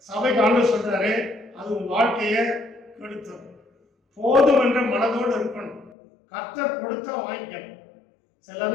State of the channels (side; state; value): right; drops out; at 5.9 s